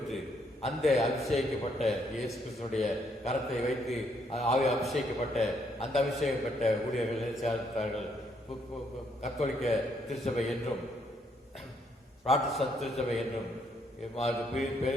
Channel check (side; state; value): both; normal; correlation 0.72